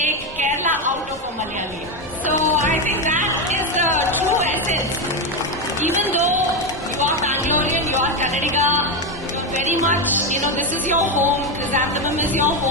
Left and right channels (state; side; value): normal; both; correlation 0.10